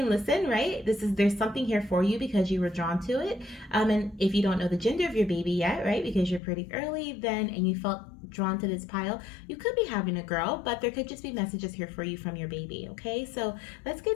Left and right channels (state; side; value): drops out; right; at 6.4 s